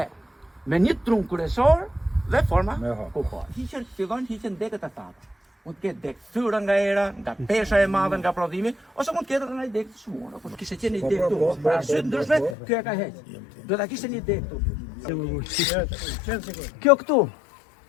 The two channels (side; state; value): right; drops out; at 12.6 s